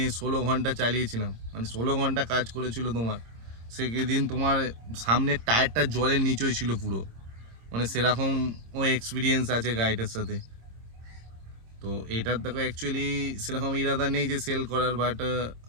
16 ঘন্টা চালিয়েছিলাম, মানে 16 ঘন্টা কাজ করেছিল তোমার। সেদিন তোমার সামনের টায়ারটা জলের নিচেই ছিল পুরো, মানে সেরকম ও এক্সপিরিয়েন্স আছে গাড়িটার সাথে। তো এটার দেখো অ্যাকচুয়ালি সেরকম ইরাদা নেই যে সেল করার, বাট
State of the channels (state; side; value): late; left; 26 ms